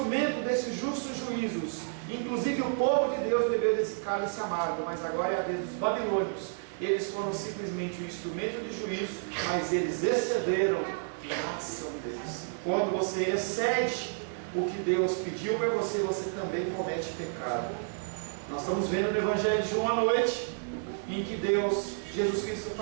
desses justos juízos. Inclusive o povo de Deus bebeu desse cálice amargo, mas agora é a vez dos babilônios. Eles foram simplesmente um instrumento de juízo, mas eles excederam na ação deles. Quando você excede o que Deus pediu para você, você também comete pecado. Nós estamos vendo no Evangelho de João à noite, em que Jesus Cristo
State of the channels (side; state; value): left; silent; digital silence